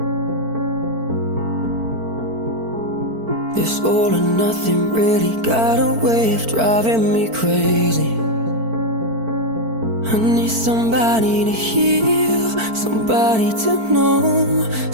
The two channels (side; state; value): left; late; 4.5 ms